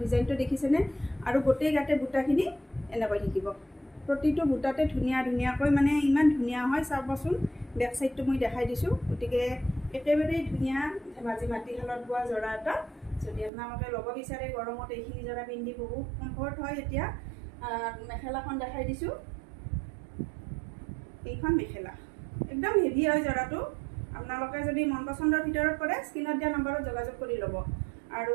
ডিজাইনটো দেখিছেনে আৰু গোটেই গাতে বুটাখিনি এনেকৈ থাকিব প্ৰতিটো বুটাতে ধুনীয়াকৈ মানে ইমান ধুনীয়া হয় চাবচোন বেক চাইডটো মই দেখাই দিছোঁ গতিকে একেবাৰেই ধুনীয়া ধেমাজি মাটিশালত বোৱা যোৰা এটা যদি আপোনালোকে ল'ব বিচাৰে গৰমত এইখিনি যোৰা পিন্ধি বহুত কমফৰ্ট হয় এতিয়া মেখেলাখন দেখাই দিছোঁ এইখন মেখেলা একদম হেভি হয় যোৰাটো আপোনালোকে যদি মন পচন্দৰ ভিতৰত কৰে স্ক্ৰীনত দিয়া নম্বৰত যোগাযোগ কৰি ল'ব আৰু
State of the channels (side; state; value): left; drops out; at 13.5 s